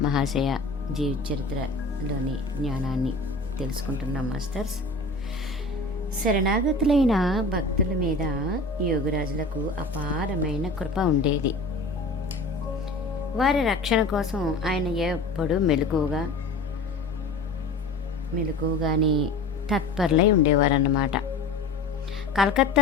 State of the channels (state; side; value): quieter; right; 3.1 dB